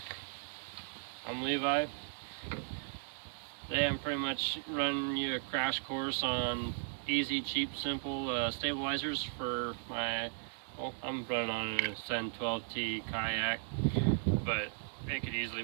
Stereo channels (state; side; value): silent; left; digital silence